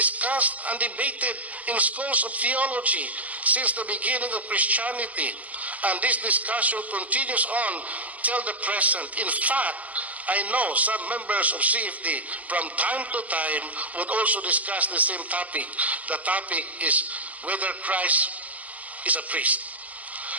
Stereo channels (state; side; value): late; left; 0.076 ms